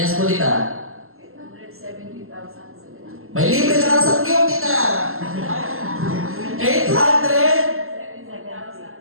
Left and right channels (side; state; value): left; late; 0.62 ms